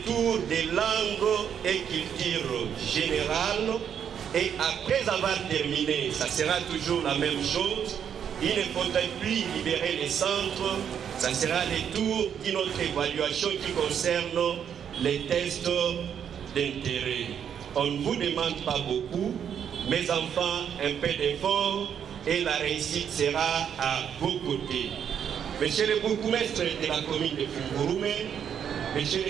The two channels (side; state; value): left; quieter; 8.4 dB